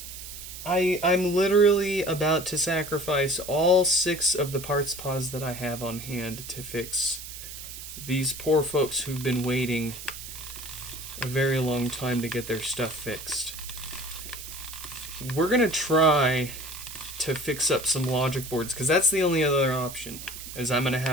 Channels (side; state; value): right; noise; hiss, 11 dB below the sound